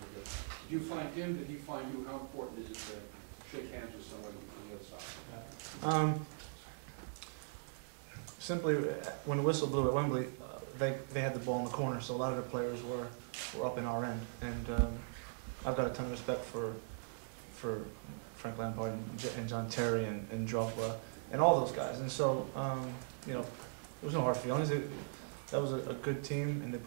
day. Did you find him, did he find you? How important is it to shake hands with somebody on the other side? Simply, when the whistle blew at Wembley, they had the ball in the corner, so a lot of the players were up in our end. And I've got a ton of respect for Frank Lampard and John Terry and Drogba and all those guys. And so, you know, there was no hard feelings. That was a good team, and they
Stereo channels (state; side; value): silent; left; digital silence